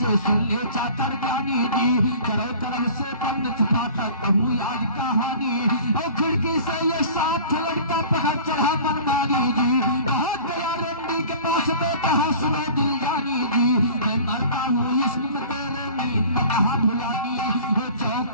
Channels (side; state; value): both; inverted; correlation -0.44